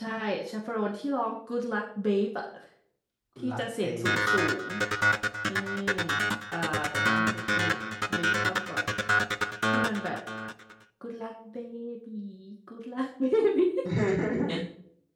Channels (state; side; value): identical; both; correlation 1.00